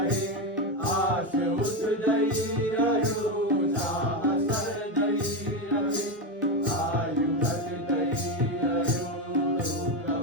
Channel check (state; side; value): normal; both; correlation 0.12